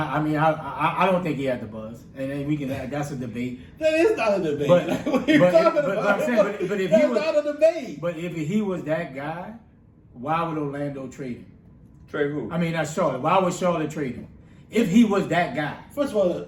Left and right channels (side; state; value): both; identical; correlation 1.00